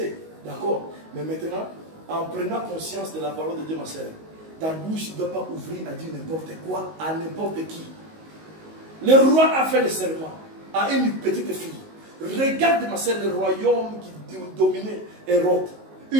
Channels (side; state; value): left; late; 19 ms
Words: d'accord, mais maintenant, en prenant conscience de la parole de Dieu, ma sœur, ta bouche ne doit pas ouvrir à dire n'importe quoi à n'importe qui. Le roi a fait le serment à une petite fille. Regarde, ma sœur, le royaume qui dominait Hérode.